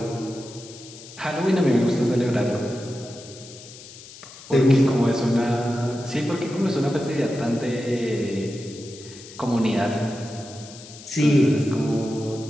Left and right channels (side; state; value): left; noise; hiss, 17 dB below the sound